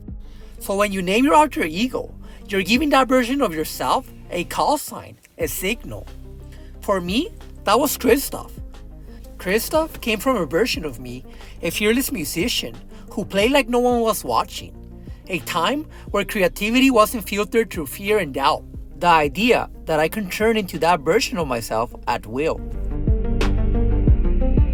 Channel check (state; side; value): identical; both; correlation 1.00